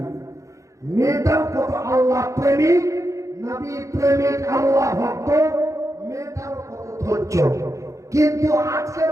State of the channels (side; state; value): left; late; 0.15 ms